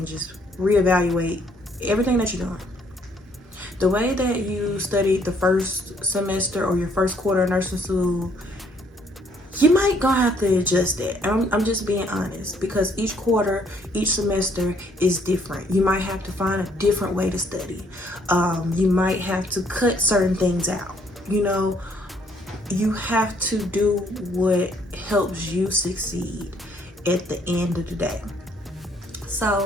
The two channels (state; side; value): normal; both; correlation 0.66